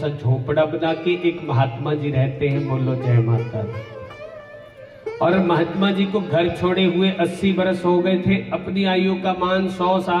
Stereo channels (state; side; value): identical; both; correlation 1.00